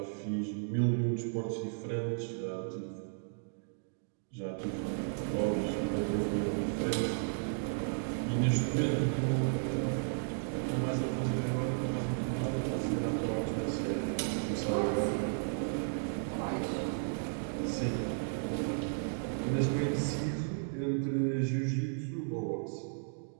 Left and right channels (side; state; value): left; silent; digital silence